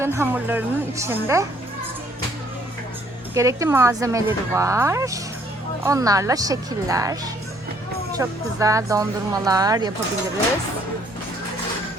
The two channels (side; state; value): both; normal; correlation 0.63